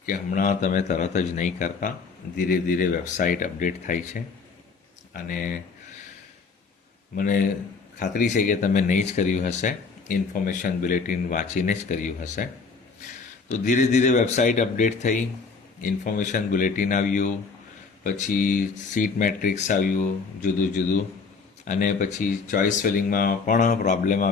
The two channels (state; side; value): quieter; right; 4.8 dB